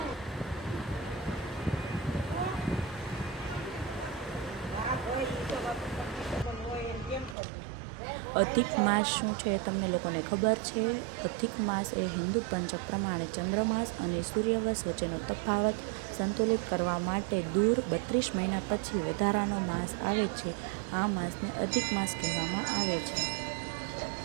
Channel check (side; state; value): left; drops out; at 7.4 s